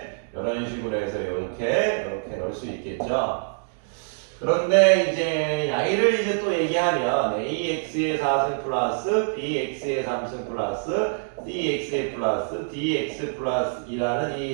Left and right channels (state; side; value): silent; left; digital silence